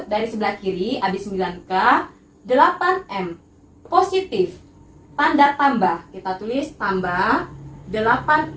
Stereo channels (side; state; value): both; identical; correlation 1.00